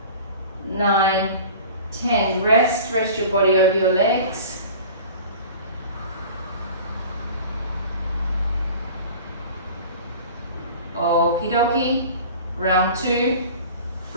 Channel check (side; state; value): both; inverted; correlation -0.41